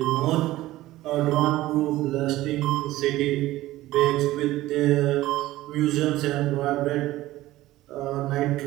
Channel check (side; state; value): left; quieter; 16.4 dB